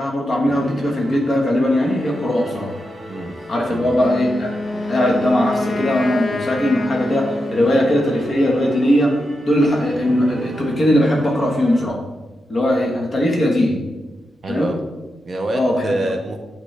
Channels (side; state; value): both; normal; correlation 0.87